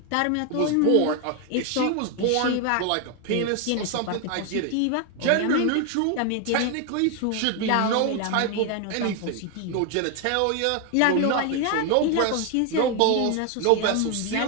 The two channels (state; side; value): different; both; correlation 0.01